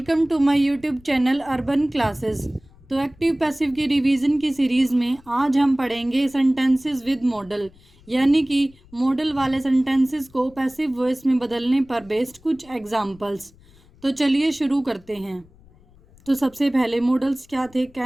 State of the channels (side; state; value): left; noise; rumble, 27 dB below the sound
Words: to my YouTube channel Urban classes. तो active passive की revision की series में आज हम पढ़ेंगे सेंटेंसेस विद मॉडल, यानी कि मॉडल वाले सेंटेंसेस को पैसिव वॉइस में बदलने पर बेस्ड कुछ एग्जांपल्स। तो चलिए शुरू करते हैं। तो सबसे पहले मॉडल्स क्या थे?